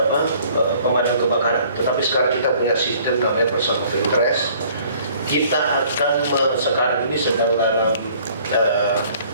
pemadam kebakaran, tetapi sekarang kita punya sistem namanya person of interest. Kita akan sekarang ini sedang dalam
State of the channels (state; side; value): inverted; both; correlation -0.56